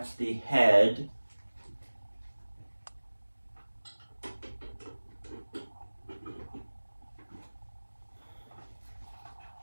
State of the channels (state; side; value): inverted; both; correlation -1.00